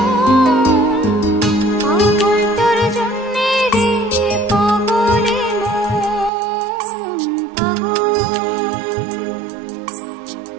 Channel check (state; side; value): drops out; left; at 6.3 s